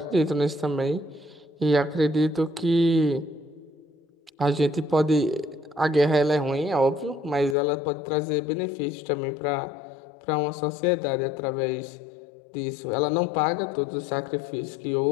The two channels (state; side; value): drops out; right; at 7.6 s